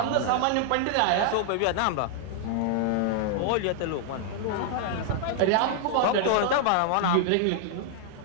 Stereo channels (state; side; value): different; both; correlation 0.00